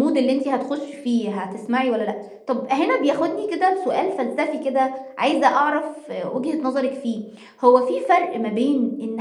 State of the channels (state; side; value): identical; both; correlation 1.00